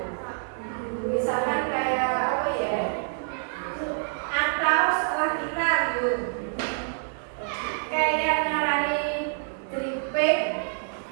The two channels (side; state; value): left; silent; 60 dB below the other